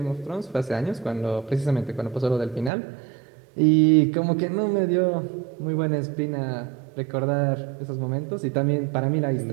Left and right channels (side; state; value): left; drops out; at 2.7 s